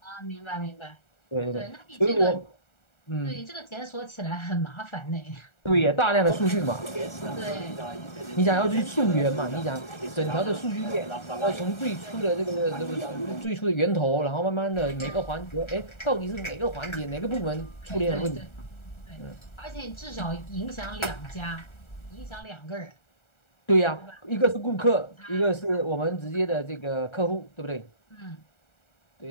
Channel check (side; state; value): right; late; 1.3 ms